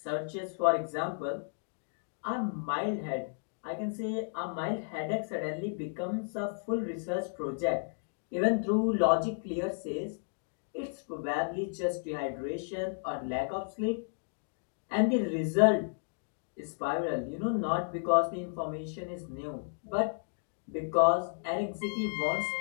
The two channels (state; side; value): silent; right; digital silence